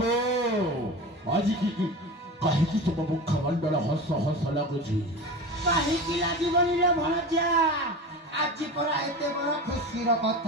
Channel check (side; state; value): both; normal; correlation 0.30